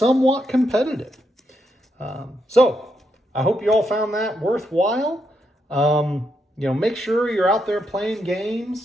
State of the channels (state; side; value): normal; both; correlation 0.80